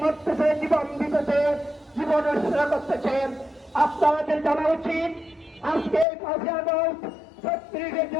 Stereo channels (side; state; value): right; drops out; at 6.1 s